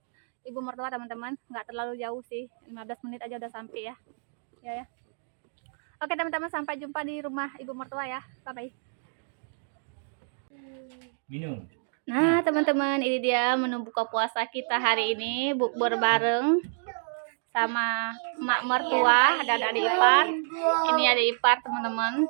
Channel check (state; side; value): silent; left; digital silence